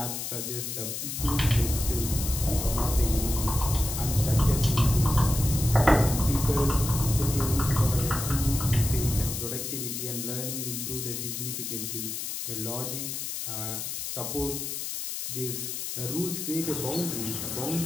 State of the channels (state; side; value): noise; left; hiss, 5 dB below the sound